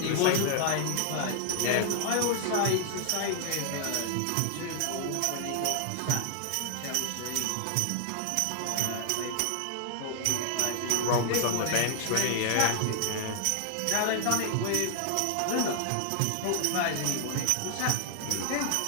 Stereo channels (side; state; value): both; different; correlation 0.00